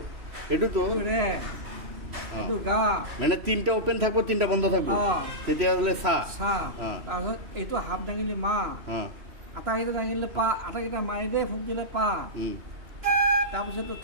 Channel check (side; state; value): left; late; 3.1 ms